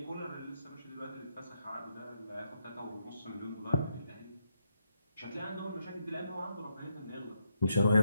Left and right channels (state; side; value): inverted; both; correlation -0.79